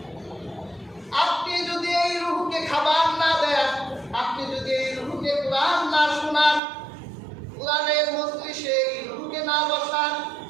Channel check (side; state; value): left; drops out; at 6.6 s